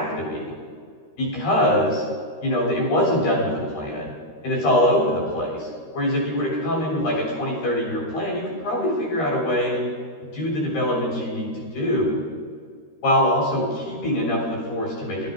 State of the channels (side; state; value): right; late; 13 ms